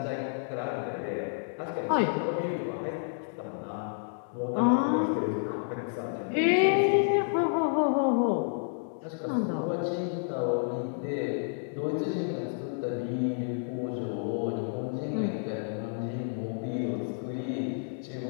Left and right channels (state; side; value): silent; right; digital silence